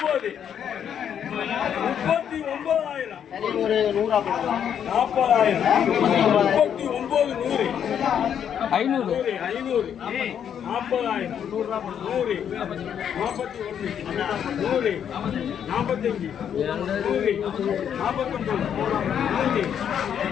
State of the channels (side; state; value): right; quieter; 8.7 dB